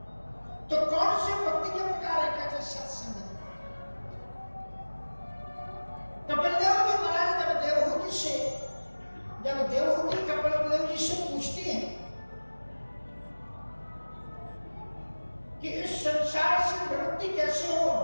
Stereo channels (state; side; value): inverted; both; correlation -1.00